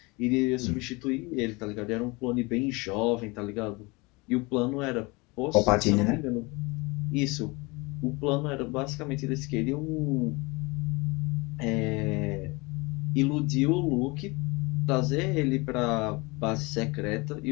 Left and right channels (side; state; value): right; quieter; 25.8 dB